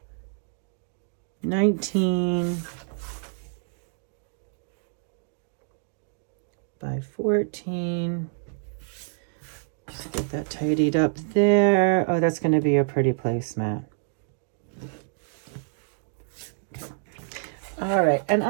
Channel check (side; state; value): left; silent; digital silence